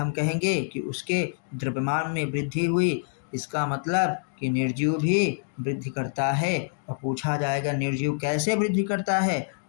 कहेंगे कि उसके द्रव्यमान में वृद्धि हुई। इसका मतलब कि निर्जीव भी वृद्धि करता है। और पूछा जाएगा निर्जीव कैसे वृद्धि करता है,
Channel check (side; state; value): right; silent; digital silence